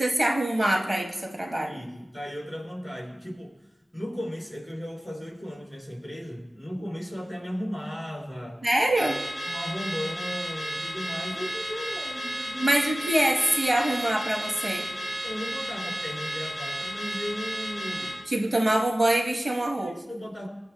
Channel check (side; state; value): both; normal; correlation 0.96